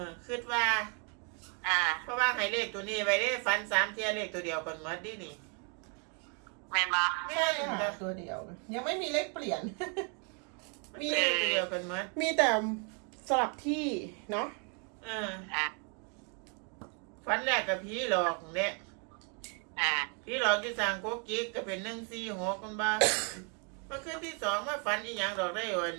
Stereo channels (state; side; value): quieter; left; 38.0 dB